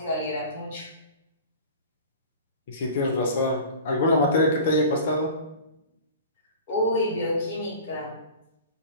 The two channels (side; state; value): both; inverted; correlation -0.39